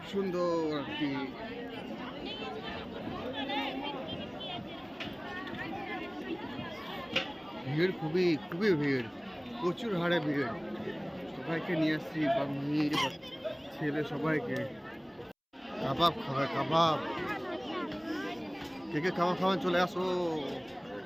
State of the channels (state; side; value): identical; both; correlation 1.00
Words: সুন্দর আর কি ভিড়, খুবই খুবই ভিড়, প্রচুর হারে ভিড়। সবাইকে নিয়ে আসছি, বাঙালি ছেলে সবাইকে। কাবাব খাবে, কাবাব। কে কে কাবাব খাবেন চলে আসো।